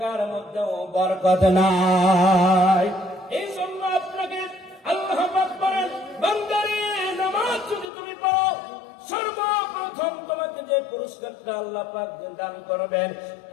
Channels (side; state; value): right; drops out; at 7.9 s